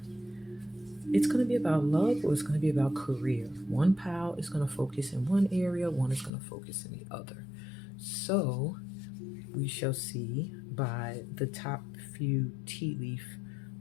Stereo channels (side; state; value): right; drops out; at 6.3 s